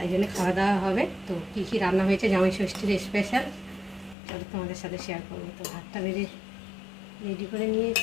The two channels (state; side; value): drops out; right; at 4.2 s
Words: জন্য খাওয়া দাওয়া হবে। তো কী কী রান্না হয়েছে জামাই ষষ্ঠীর স্পেশাল, চলো তোমাদের সাথে শেয়ার করবো। তো ভাতটা রেডি করে